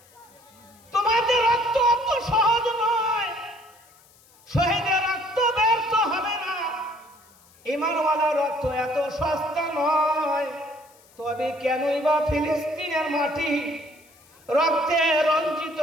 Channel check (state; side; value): noise; left; hiss, 28 dB below the sound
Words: তোমাদের রক্ত অত সহজ নয়, শহীদের রক্ত ব্যর্থ হবে না, ঈমানওয়ালা রক্ত এত সস্তা নয়। তবে কেনই বা ফিলিস্তিনের মাটি রক্তে রঞ্জিত